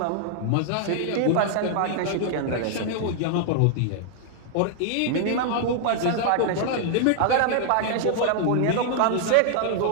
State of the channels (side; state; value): both; different; correlation -0.01